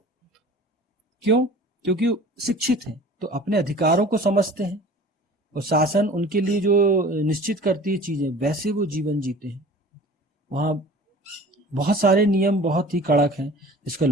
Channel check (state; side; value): normal; both; correlation 0.44